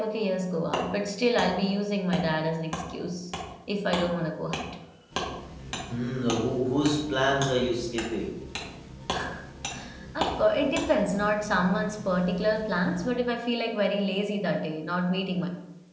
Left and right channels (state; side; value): identical; both; correlation 1.00